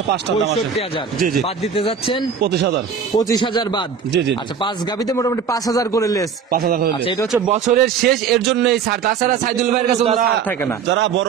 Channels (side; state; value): left; quieter; 6.7 dB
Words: 5 টাকা দাম আছে। 65,000 জি জি। বাদ দিতে যাচ্ছেন 25,000। 25,000 বাদ। জি, জি, জি। আচ্ছা, 5 গাভীতে মোটামুটি 5,000 করে লেস। 5,000 করে আচ্ছা, এটা হচ্ছে বছরের শেষ, এর জন্য এই ছাড়। তাছাড়া সাইদুল ভাইয়ের কাছে কোনো ছাড় থাকে না। যারা বড়